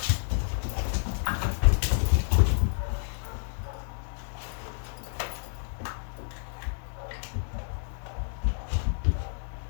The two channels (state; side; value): silent; right; digital silence